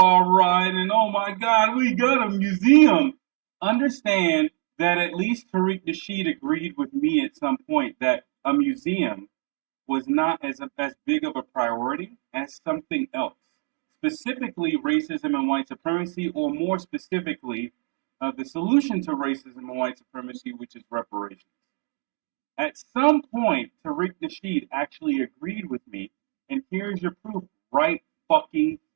rah and oh my God, we got a museum. Understand that at least Tariq Nasheed agreed with me at some point that a museum was not as big of a priority as something else, specifically racism and white supremacy, or more specifically, the solution to racism and white supremacy, which is reparations. At some point, Tariq Nasheed actually agreed with me, and here's your proof right fucking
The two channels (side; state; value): left; quieter; 27.7 dB